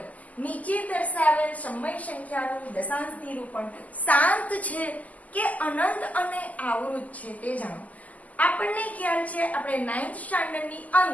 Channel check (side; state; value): right; late; 0.076 ms